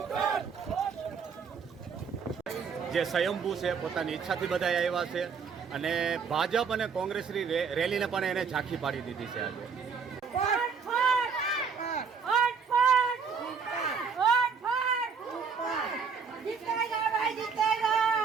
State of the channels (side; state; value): left; quieter; 5.8 dB